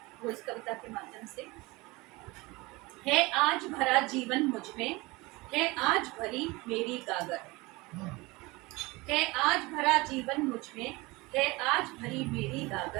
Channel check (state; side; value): quieter; left; 23.1 dB